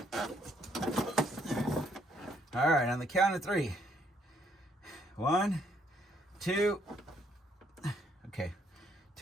All right, on the count of 3. 1, 2, okay,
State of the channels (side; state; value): both; normal; correlation 0.70